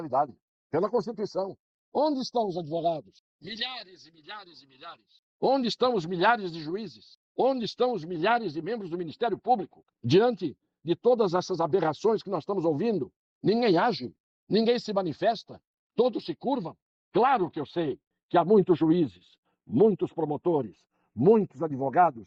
pela Constituição. Onde estão os advogados? Milhares e milhares e milhares. Onde estão os milhares de juízes? Onde estão os milhares de membros do Ministério Público? Diante de todas essas aberrações que nós estamos ouvindo, ninguém age, ninguém se manifesta, todos se curvam. Claro que eu sei que há muitos juízes, muitos promotores, muitos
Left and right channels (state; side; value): identical; both; correlation 1.00